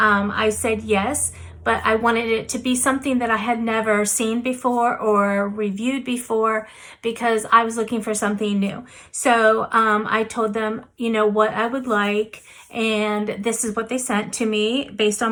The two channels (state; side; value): identical; both; correlation 1.00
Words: said yes, but I wanted it to be something that I had never seen before or reviewed before because I was looking for something new. So I told them, what I would like, and this is what they sent to me based